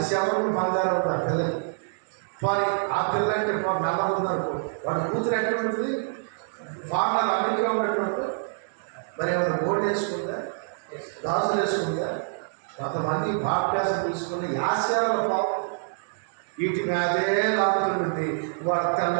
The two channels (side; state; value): left; silent; digital silence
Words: శవరం బంగారం ఉంది ఆ పిల్లకి. వారి ఆ పిల్ల అంటే నల్ల ఉందనుకో, వాడు కూతురు ఎక్కడ ఉంటుంది, ఫార్మర్ అమెరికా ఉన్నట్టు. మరి ఏమైనా బోర్డు వేసుకుందా, గాజులు వేసుకుందా? కొంతమంది భాప్యాసం తీసుకుని ఆశ్చర్యాల పాపం వీటి మీదే లాగుతుంటుంది. వాడు